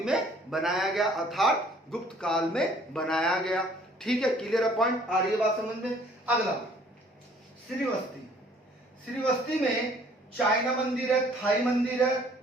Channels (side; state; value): both; normal; correlation 0.58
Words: में बनाया गया, अर्थात गुप्त काल में बनाया गया। ठीक है, क्लियर है पॉइंट, आ रही है बात समझ में। अगला श्रीवस्ती, श्रीवस्ती में चाइना मंदिर है, थाई मंदिर है,